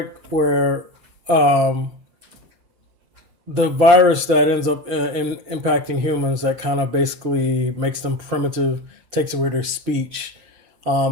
where the virus that ends up impacting humans that kind of basically makes them primitive, takes away their speech,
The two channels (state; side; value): late; left; 5.7 ms